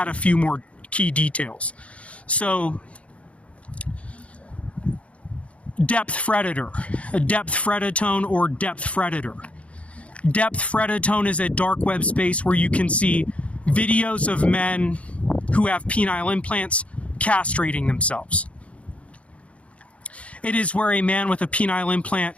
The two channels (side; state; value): right; late; 0.063 ms